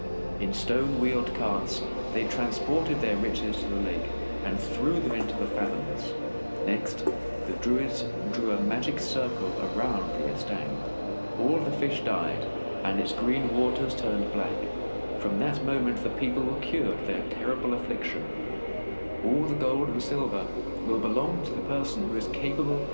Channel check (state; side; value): inverted; both; correlation -1.00